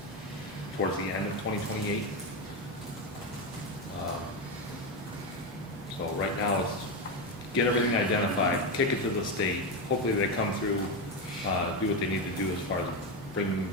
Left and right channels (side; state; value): both; normal; correlation 0.12